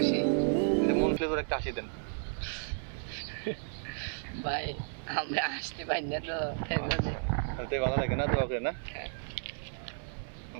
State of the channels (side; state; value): left; silent; 56 dB below the other